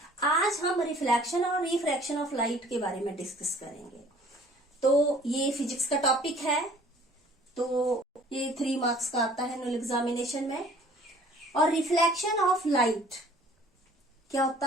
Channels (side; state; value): both; normal; correlation 0.54